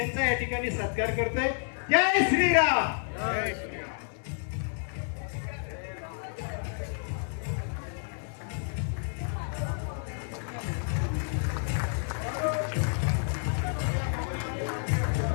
या ठिकाणी सत्कार करतोय. जय श्रीराम. जय श्रीराम.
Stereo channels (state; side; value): silent; right; 57 dB below the other